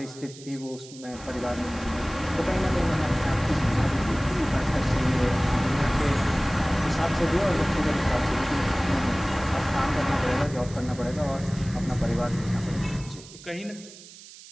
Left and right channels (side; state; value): right; noise; hiss, 18 dB below the sound